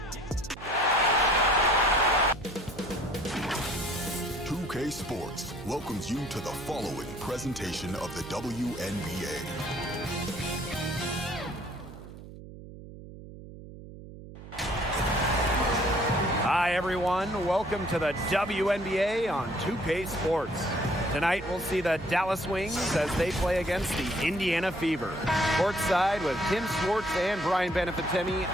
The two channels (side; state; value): right; noise; hum, 15 dB below the sound